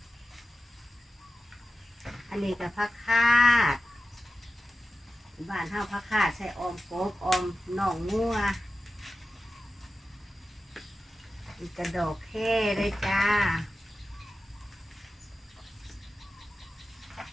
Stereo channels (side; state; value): both; normal; correlation 0.94